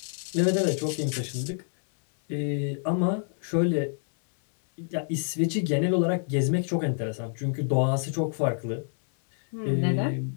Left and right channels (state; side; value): silent; right; 60 dB below the other